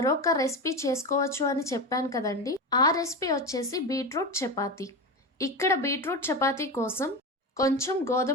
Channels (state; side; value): normal; both; correlation 0.21